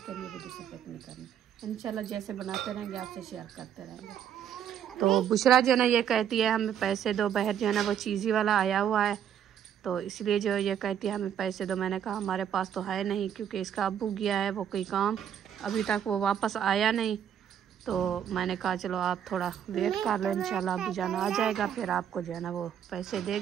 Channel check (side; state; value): left; quieter; 9.3 dB